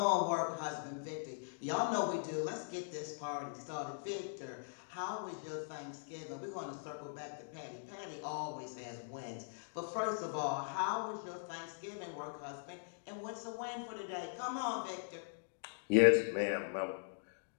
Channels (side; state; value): right; silent; digital silence